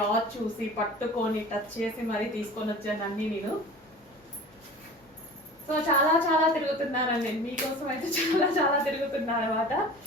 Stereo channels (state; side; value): normal; both; correlation 0.39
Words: చూసి పట్టుకొని టచ్ చేసి మరీ తీసుకొని వచ్చాను అన్నీ నేను. సో చాలా తిరుగుతున్నానండి నేను మీకోసం అయితే. చాలా తిరుగుతున్నాను అనమాట.